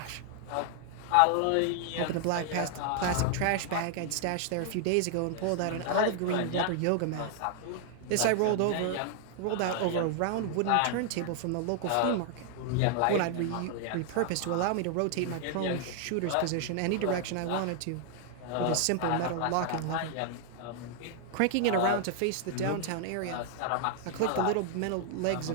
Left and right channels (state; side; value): different; both; correlation 0.00